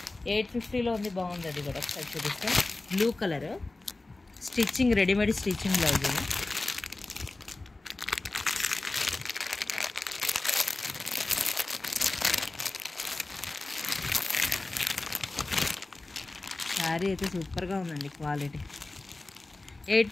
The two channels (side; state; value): right; quieter; 3.1 dB